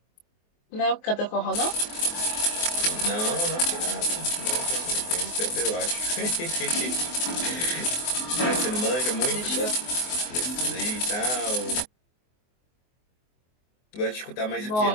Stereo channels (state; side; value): late; right; 24 ms